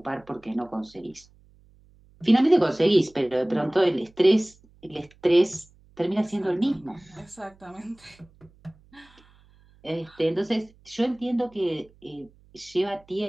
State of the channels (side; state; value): right; noise; hum, 29 dB below the sound